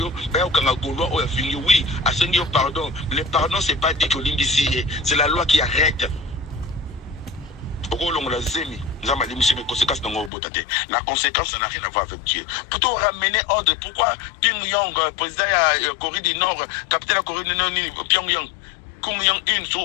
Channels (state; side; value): drops out; right; at 10.3 s